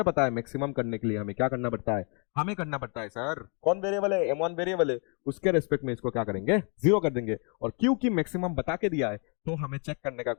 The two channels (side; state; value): right; quieter; 36.9 dB